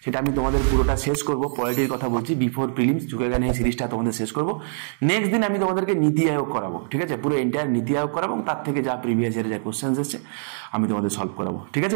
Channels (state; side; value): silent; left; digital silence